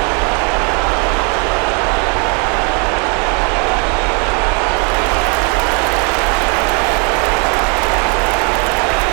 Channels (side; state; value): left; quieter; 33.5 dB